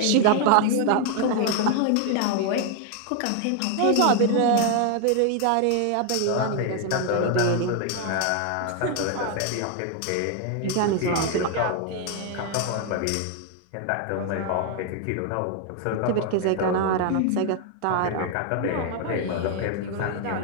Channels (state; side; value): different; both; correlation 0.00